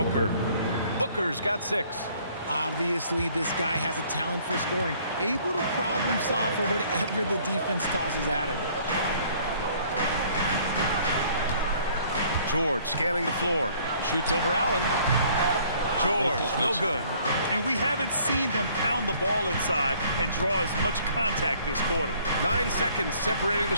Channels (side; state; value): both; inverted; correlation -0.58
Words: Booker's got 6. Obviously, this guy has a talent for scoring, able to problem solve for whatever the defense tosses at him. George scanning the floor. Shoots over Allen. George, no good. And we haven't seen them pound the ball inside and draw as much contact this quarter. 9 seconds separating the